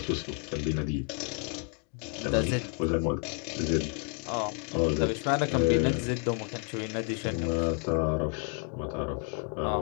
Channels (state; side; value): quieter; right; 37.3 dB